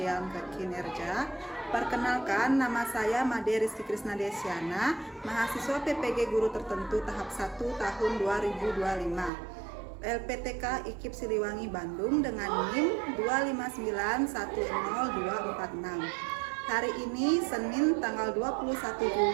kinerja, perkenalkan nama saya Made Rizky Krisna Desiana, mahasiswa PPG Guru Tertentu tahap 1 tahun 2025. LPTK IKIP Siliwangi Bandung dengan NIM 259100246. Hari ini Senin tanggal 21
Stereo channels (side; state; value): left; drops out; at 9.3 s